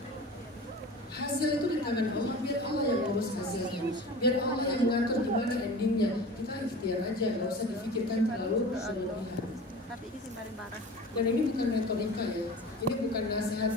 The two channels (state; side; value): normal; both; correlation 0.37